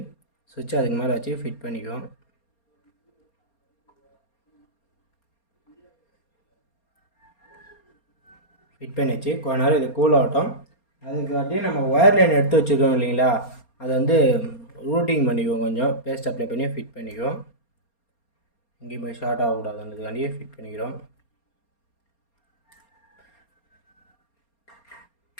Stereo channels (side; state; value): right; late; 4.3 ms